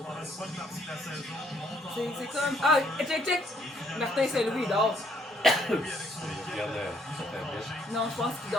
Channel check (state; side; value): normal; both; correlation 0.68